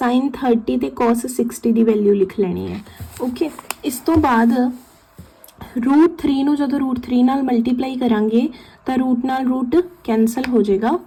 30 ते cos 60 की वैल्यू लिख लेनी है, ओके। इस तो बाद रूट 3 नूं जदों रूट 3 नाल मल्टीप्लाई करांगे तो रूट नाल रूट कैंसल हो जाएगा,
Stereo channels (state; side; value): identical; both; correlation 1.00